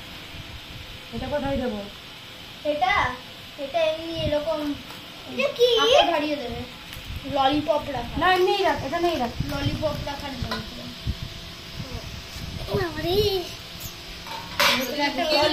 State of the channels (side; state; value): both; identical; correlation 1.00